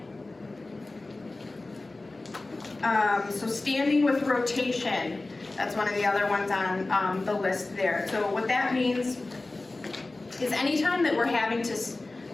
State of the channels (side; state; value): right; quieter; 3.1 dB